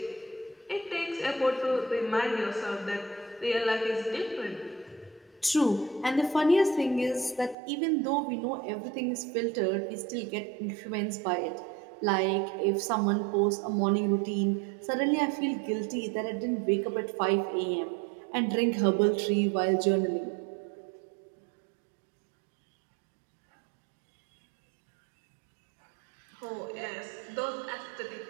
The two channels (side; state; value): left; drops out; at 7.6 s